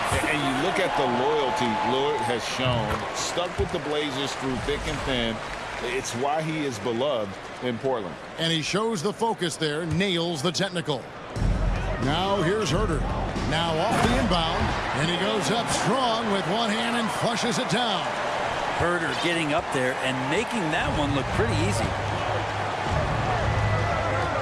And you look at the loyalty Lillard has shown, stuck with the Blazers through thick and thin. It's why he is beloved in Portland. And he shows the focus there, nails the technical. Now here's Herter. Now off the inbound, and he goes up strong with one hand and flushes it down. Herter getting up there and making that one look pretty easy.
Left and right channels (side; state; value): both; identical; correlation 1.00